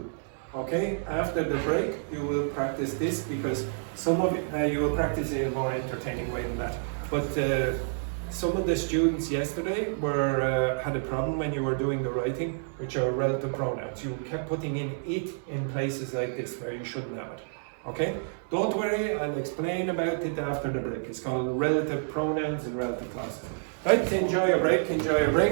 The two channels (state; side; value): silent; left; digital silence